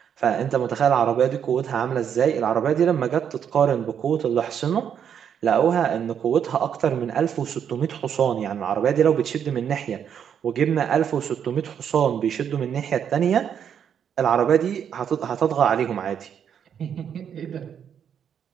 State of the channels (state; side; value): quieter; left; 8.3 dB